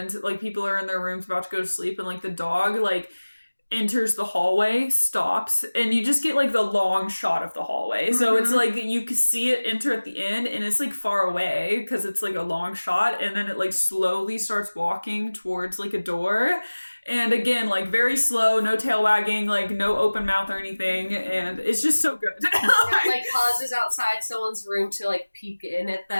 like, people are in their rooms about to go to sleep, and, like, the dog, like, enters the hallway, stops, and you just get like the long shot of the hallway. So it's like you can see it enter at the end, and it's like far away because it's like a long shot, and then it like slowly starts walking towards like a door. And again, like very slow, no tail wagging, like no open mouth or anything, and it's just so good. It like pauses outside someone's room to like peek in at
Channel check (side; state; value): both; inverted; correlation -1.00